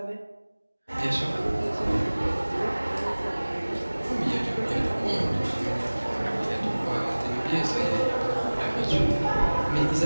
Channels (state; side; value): inverted; both; correlation -1.00